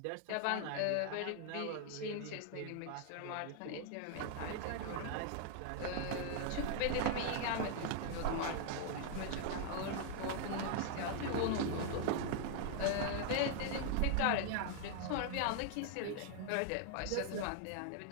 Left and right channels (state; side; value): different; both; correlation 0.00